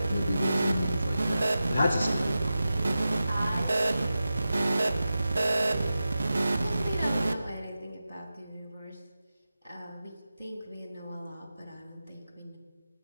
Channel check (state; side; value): inverted; both; correlation -0.93